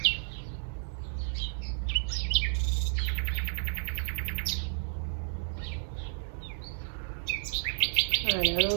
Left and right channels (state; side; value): silent; left; digital silence